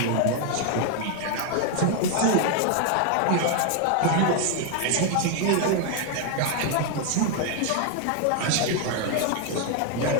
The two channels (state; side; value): different; both; correlation 0.00